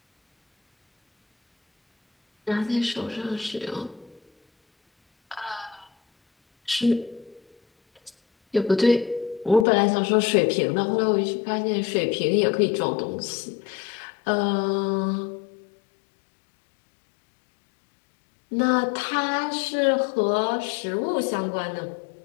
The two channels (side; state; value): right; drops out; at 9.7 s